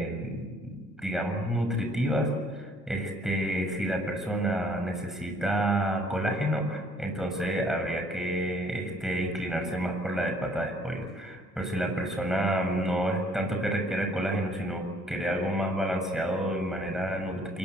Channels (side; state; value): both; normal; correlation 0.60